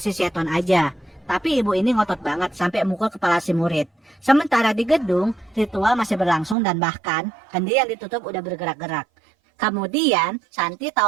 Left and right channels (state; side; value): drops out; left; at 6.6 s